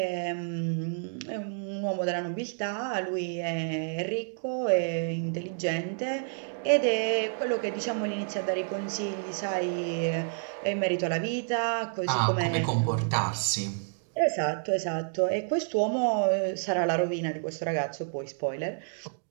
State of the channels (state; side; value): silent; left; digital silence